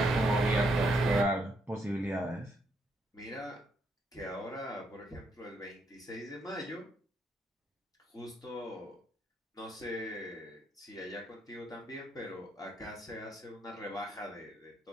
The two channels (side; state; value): both; normal; correlation 0.75